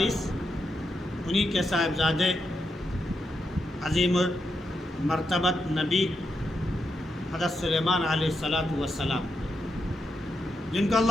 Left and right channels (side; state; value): both; normal; correlation 0.84